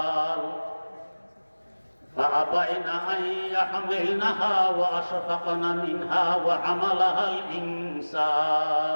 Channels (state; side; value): inverted; both; correlation -1.00